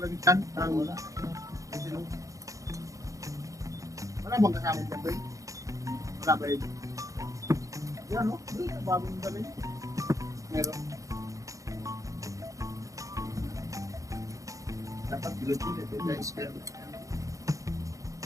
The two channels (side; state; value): left; late; 0.16 ms